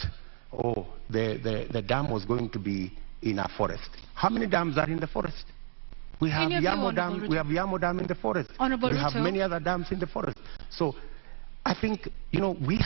the dam was going to be in a forest. How many dams are in the forest? We have Yamo Dam. We have Yamo Dam in the forest. Honorable we have Ruto. many other dams in the forest. So I think, we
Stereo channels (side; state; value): left; silent; digital silence